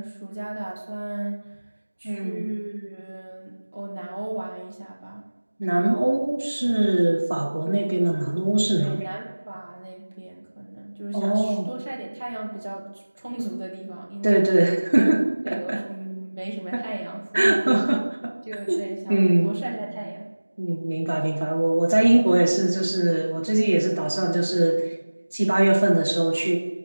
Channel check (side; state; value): both; inverted; correlation -1.00